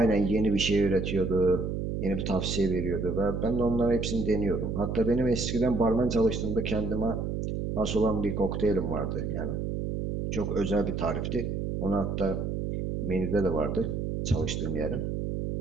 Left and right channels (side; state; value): right; noise; hum, 2 dB below the sound